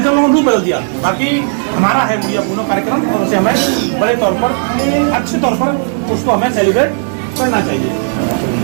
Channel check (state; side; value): silent; left; digital silence